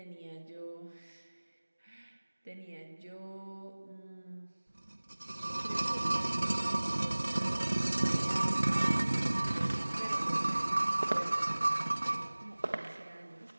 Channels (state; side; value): inverted; both; correlation -1.00